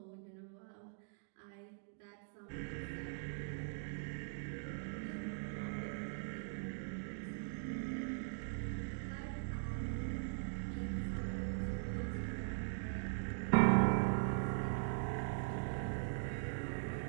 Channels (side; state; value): left; silent; digital silence